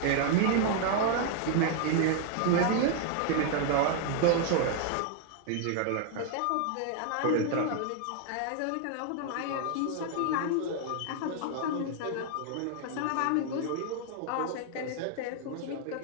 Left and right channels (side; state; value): both; different; correlation 0.00